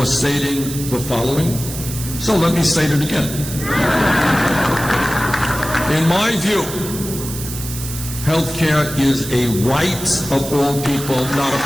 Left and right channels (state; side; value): noise; right; hiss, 9 dB below the sound